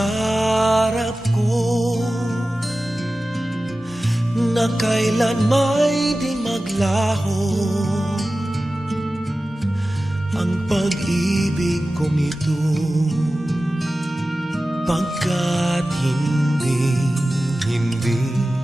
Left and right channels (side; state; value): both; normal; correlation 0.95